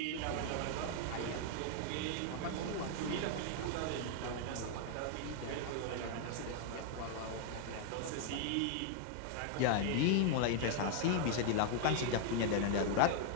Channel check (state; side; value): different; both; correlation 0.00